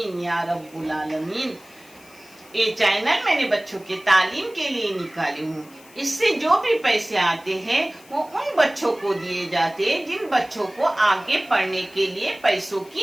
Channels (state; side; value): noise; left; hiss, 25 dB below the sound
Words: या रब्बुल आलमीन। ये चैनल मैंने बच्चों के तालीम के लिए निकाली हूँ। इससे जो भी पैसे आते हैं वो उन बच्चों को दिए जाते हैं जिन बच्चों को आगे पढ़ने के लिए पैसों